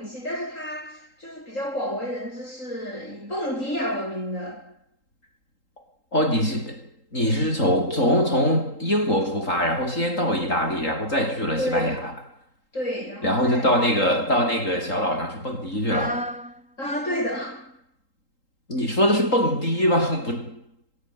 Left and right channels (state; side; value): late; right; 3.8 ms